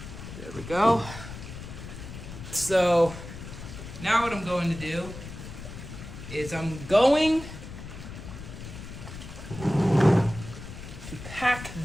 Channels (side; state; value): left; noise; rumble, 11 dB below the sound